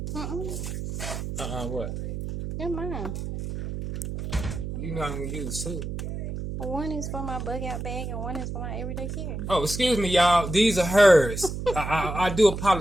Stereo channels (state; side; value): noise; right; hum, 5 dB below the sound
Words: what? They're mine. You know I'm gonna use 2. One is for my bug out bag and one is for my everyday carry. Oh, excuse me, y'all. These are hers. I do